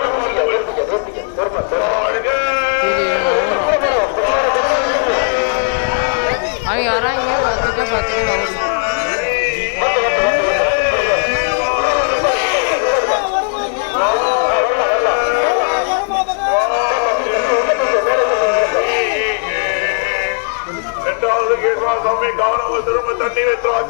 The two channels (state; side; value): silent; right; 64 dB below the other